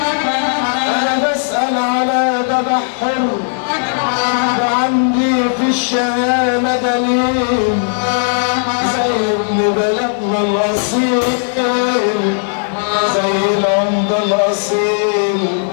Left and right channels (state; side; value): silent; right; 64 dB below the other